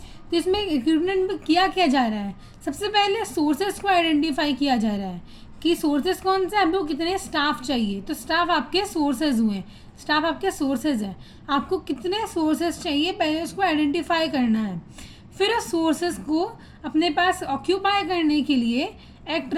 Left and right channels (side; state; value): both; identical; correlation 1.00